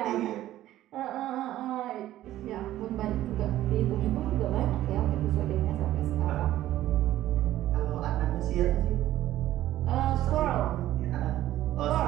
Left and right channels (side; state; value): left; quieter; 13.9 dB